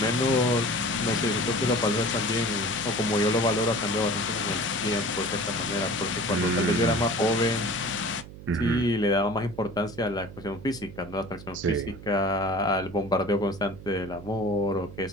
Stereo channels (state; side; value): noise; right; hum, 15 dB below the sound